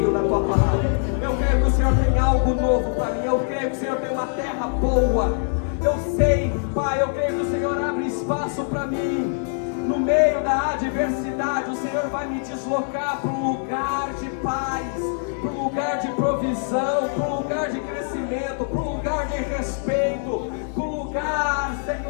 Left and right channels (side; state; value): right; silent; digital silence